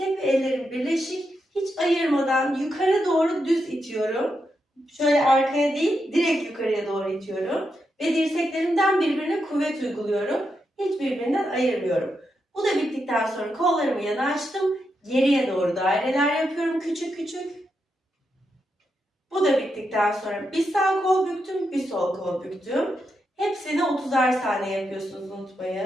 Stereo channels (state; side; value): normal; both; correlation 0.84